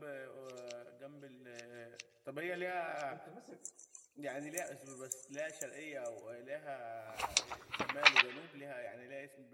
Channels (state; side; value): identical; both; correlation 1.00